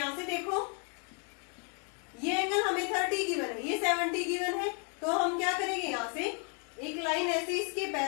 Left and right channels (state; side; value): quieter; right; 38.3 dB